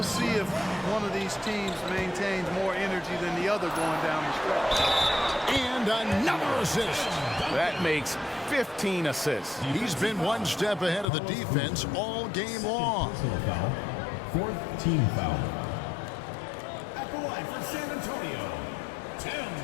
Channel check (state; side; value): drops out; right; at 11.1 s